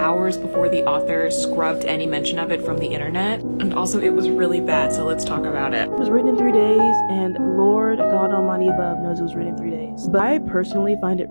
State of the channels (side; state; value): both; inverted; correlation -1.00